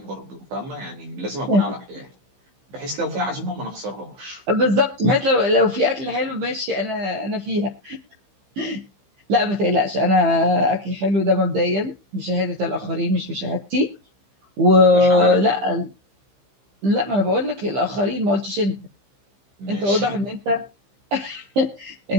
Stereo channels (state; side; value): late; left; 15 ms